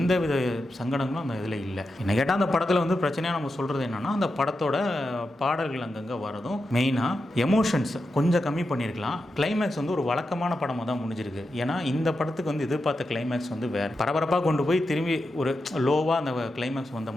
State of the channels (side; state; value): both; normal; correlation 0.88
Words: வித சங்கடங்களும் அந்த இதில் இல்லை. என்ன கேட்டால் அந்த படத்தில் பிரச்சனையாக நம்ம சொல்கிறது என்னென்னா அந்த படத்தோட பாடல்கள் அங்கங்கே வரதும் மெயினாக எமோஷன்ஸ் கொஞ்சம் கம்மி பண்ணியிருக்கலாம். கிளைமேக்ஸ் ஒரு வழக்கமான படமாக தான் முடிஞ்சிருக்கு. ஏன்னா இந்த படத்துக்கு எதிர்பார்த்த கிளைமேக்ஸ் வேறு பரபரப்பாக கொண்டு போய் திரும்பி ஒரு லோவாக அந்த கிளைமேக்ஸ் வந்த